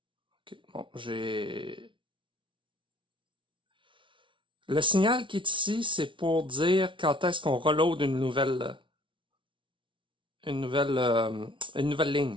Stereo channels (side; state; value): left; late; 0.25 ms